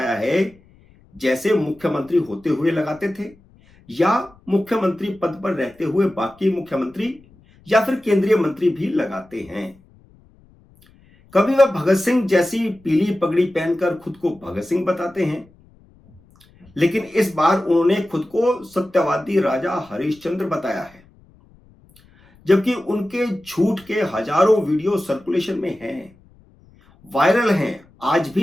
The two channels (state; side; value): noise; left; rumble, 29 dB below the sound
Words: है जैसे मुख्यमंत्री होते हुए लगाते थे, या मुख्यमंत्री पद पर रहते हुए बाकी मुख्यमंत्री या फिर केंद्रीय मंत्री भी लगाते हैं। कभी वह भगत सिंह जैसी पीली पगड़ी पहनकर खुद को भगत सिंह बताते हैं, लेकिन इस बार उन्होंने खुद को सत्यवादी राजा हरिश्चंद्र बताया है। जबकि उनके झूठ के हजारों वीडियो सर्कुलेशन में हैं, वायरल हैं, आज